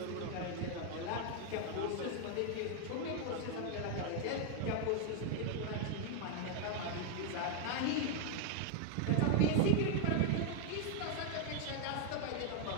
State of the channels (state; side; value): different; both; correlation 0.00